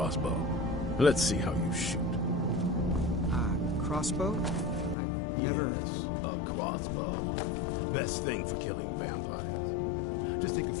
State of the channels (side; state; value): right; drops out; at 5.0 s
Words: Let's see how you shoot. Crossbow? I've never... Yes, a crossbow. Best thing for killing vampires. Just take a